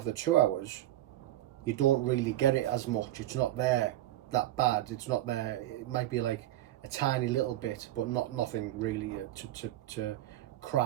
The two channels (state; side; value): quieter; left; 14.3 dB